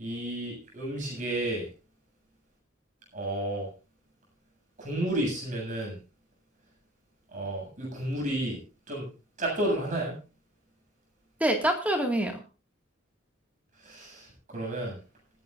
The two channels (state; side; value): normal; both; correlation 0.48